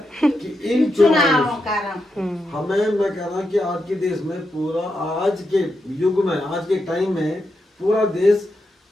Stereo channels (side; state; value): both; normal; correlation 0.85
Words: कि इन चुनावों हमें, मैं कह रहा हूँ कि आज के देश में पूरा आज के युग में आज के टाइम में पूरा देश